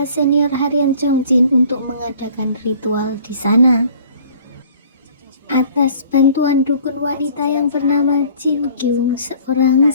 senior Harian Jongjin untuk mengadakan ritual di sana. Atas bantuan dukun wanita yang bernama Jin Kyung, seorang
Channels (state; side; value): inverted; both; correlation -0.52